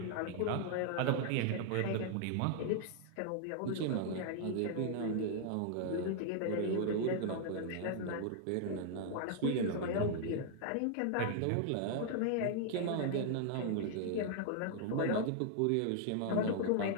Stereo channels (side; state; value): both; different; correlation 0.00